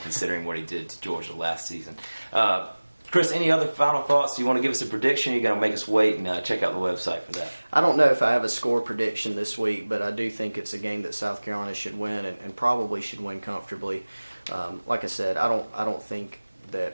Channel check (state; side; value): inverted; both; correlation -1.00